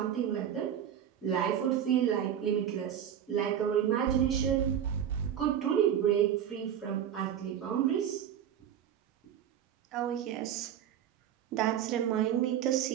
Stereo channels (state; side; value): quieter; left; 9.7 dB